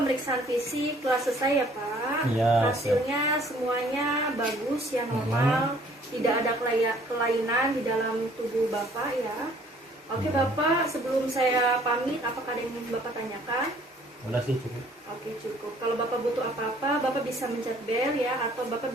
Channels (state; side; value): normal; both; correlation 0.58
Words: fisik telah selesai ya Pak. Iya. Hasilnya semuanya bagus ya, normal. Tidak ada kelainan di dalam tubuh Bapak ya. Oke Bapak, sebelum saya pamit, apakah ada yang ingin Bapak tanyakan? Udah sih cukup. Oke, cukup. Kalau Bapak butuh apa-apa, Bapak bisa mencet bel ya, atau Bapak